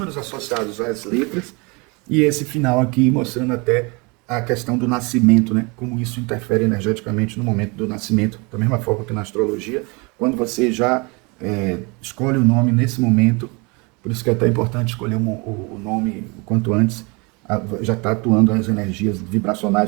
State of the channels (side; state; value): left; quieter; 28.8 dB